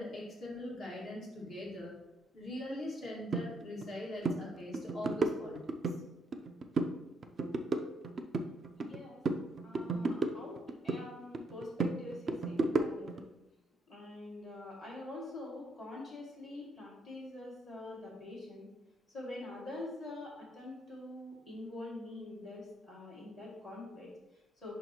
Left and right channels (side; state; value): both; normal; correlation 0.75